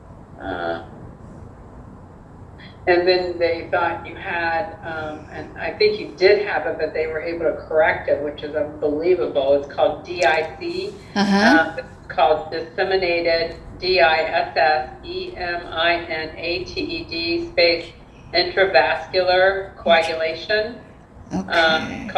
and then they thought you had, and I think you did have it, but they were able to correct it, which is unbelievable. It's called DIC. It's called disseminated, DISSEMINATED space intravascular coagulation. Okay.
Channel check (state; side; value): identical; both; correlation 1.00